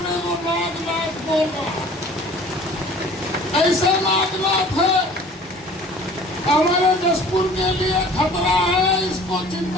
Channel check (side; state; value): both; normal; correlation 0.48